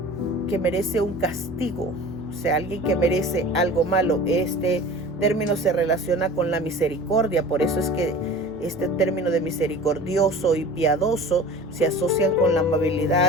que merece un castigo, o sea, alguien que merece algo malo. Este término se relaciona con la misericordia, por eso es que este término de misericordioso y piadoso se asocian con la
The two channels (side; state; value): both; normal; correlation 0.40